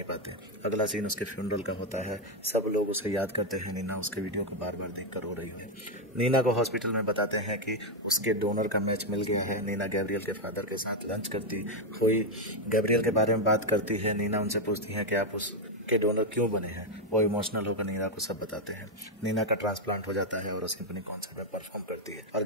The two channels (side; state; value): both; normal; correlation 0.04